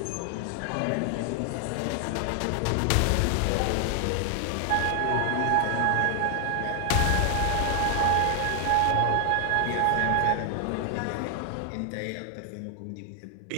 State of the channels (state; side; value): different; both; correlation 0.00